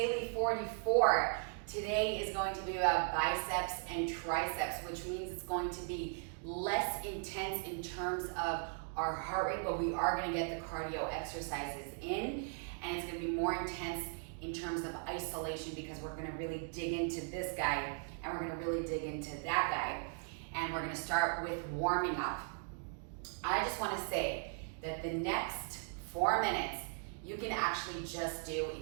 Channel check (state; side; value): silent; left; 52 dB below the other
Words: 44. Today is going to be about biceps and triceps, which means it's going to be less intense in terms of our heart rate, but we are going to get the cardio exercises in, and it's going to be more intense in terms of isolation because we're going to really dig into this guy and we're going to really dig into that guy, and we're going to start with warming up. I just want to say that the next 4 minutes you can actually just do